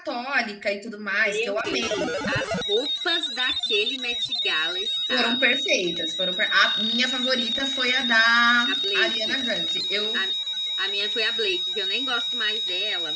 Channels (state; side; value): identical; both; correlation 1.00